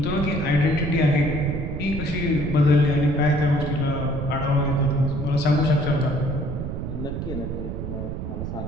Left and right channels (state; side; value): noise; right; rumble, 5 dB below the sound